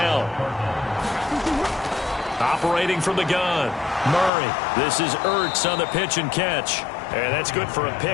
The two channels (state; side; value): drops out; right; at 4.3 s